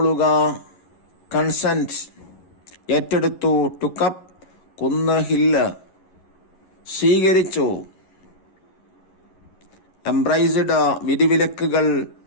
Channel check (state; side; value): late; right; 11 ms